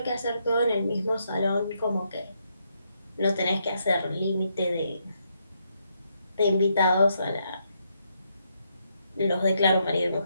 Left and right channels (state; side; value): inverted; both; correlation -0.78